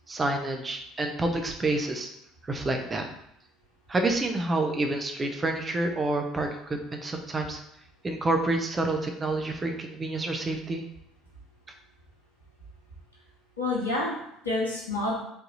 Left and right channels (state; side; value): normal; both; correlation 0.69